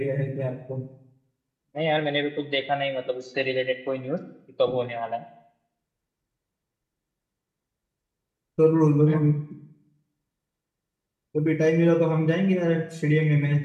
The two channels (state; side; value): identical; both; correlation 1.00